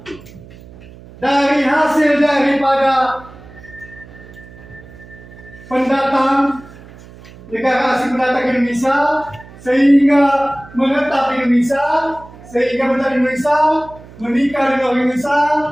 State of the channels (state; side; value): noise; right; hum, 20 dB below the sound